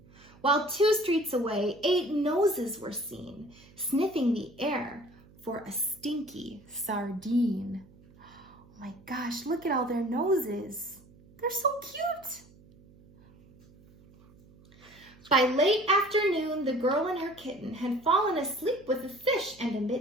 While 2 streets away, 8 noses were seen, sniffing the air for a stinky sardine. Oh my gosh, look at all their noses. They're so cute. By late afternoon, the girl and her kitten had fallen asleep with a fish and a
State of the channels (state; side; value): noise; right; hum, 25 dB below the sound